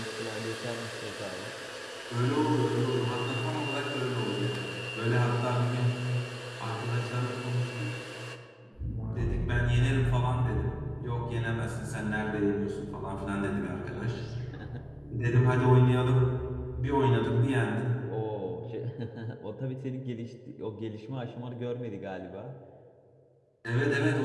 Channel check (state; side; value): identical; both; correlation 1.00